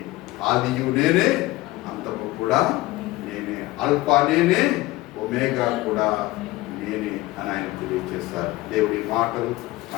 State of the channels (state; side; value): quieter; right; 18.8 dB